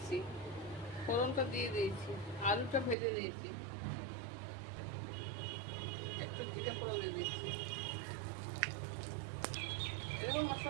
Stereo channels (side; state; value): left; drops out; at 3.0 s